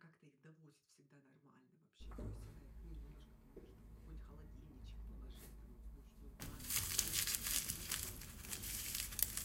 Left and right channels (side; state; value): both; identical; correlation 1.00